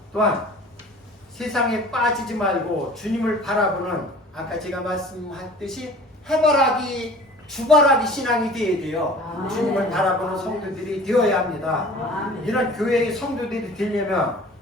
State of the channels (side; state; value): both; normal; correlation 0.45